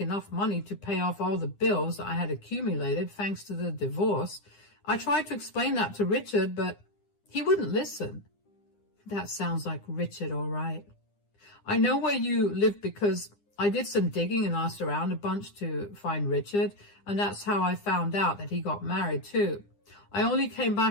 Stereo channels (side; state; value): right; late; 9.9 ms